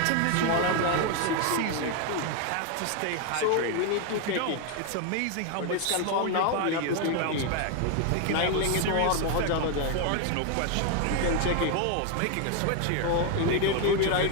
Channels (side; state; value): both; different; correlation 0.01